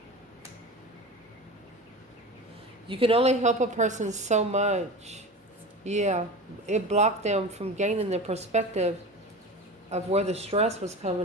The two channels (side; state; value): both; normal; correlation 0.31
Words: You can only help a person so much. Yeah, it blocked them from gaining the perspective of where the stress was